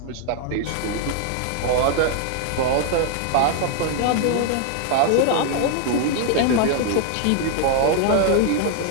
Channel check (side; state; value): both; different; correlation 0.00